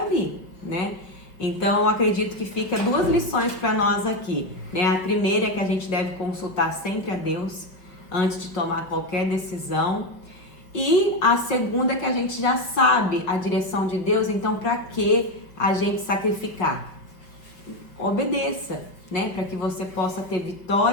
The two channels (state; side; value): late; right; 5.1 ms